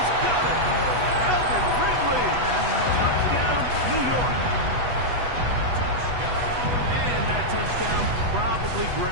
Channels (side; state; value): left; late; 8.1 ms